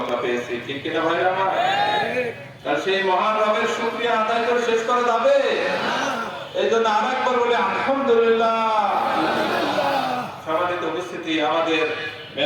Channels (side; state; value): both; identical; correlation 1.00